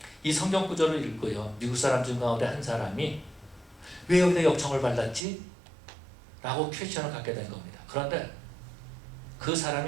이 성경 구절을 읽고요, 미국 사람 중 가운데 한 사람이 왜 여기다 역청을 발랐지? 라고 퀘스천을 갖게 된 겁니다. 그런데 그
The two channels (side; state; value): left; drops out; at 5.2 s